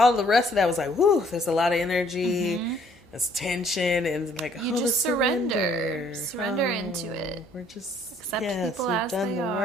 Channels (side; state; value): both; normal; correlation 0.62